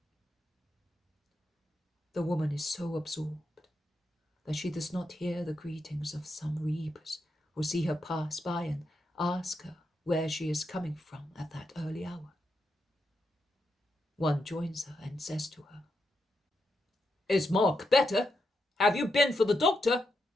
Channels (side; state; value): both; normal; correlation 0.84